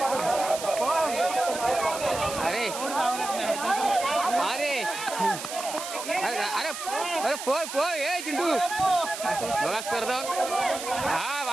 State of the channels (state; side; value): noise; right; hiss, 8 dB below the sound